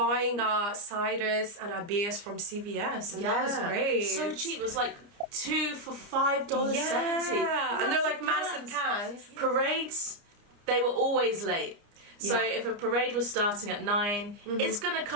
our ciders and our beers from CVS, and that was great. So cheap. It was like 2 for $5.70. Yeah, and they're like massive cans. Parades, they were always late. So if a parade was starting at 9, it's gonna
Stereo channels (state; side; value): late; left; 29 ms